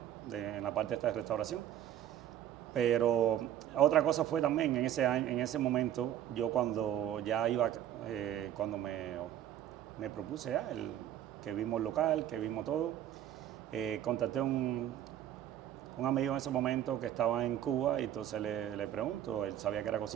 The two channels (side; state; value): left; quieter; 11.3 dB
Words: En la parte esta de restauración. Pero otra cosa fue también en ese momento, yo cuando ya iba, cuando me propuse ya, que vimos el local, que vimos todo, contacté a un amigo en ese momento que estaba en Cuba, y entonces le pregunto, él sabía que era